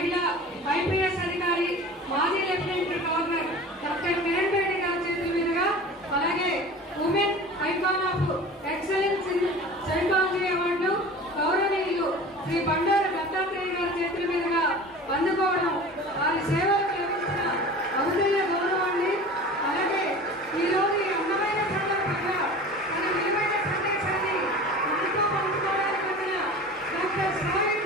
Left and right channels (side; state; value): both; normal; correlation 0.38